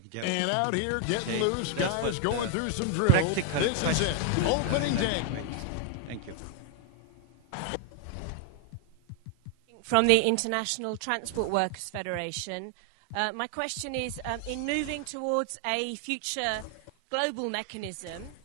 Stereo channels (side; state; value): both; different; correlation 0.00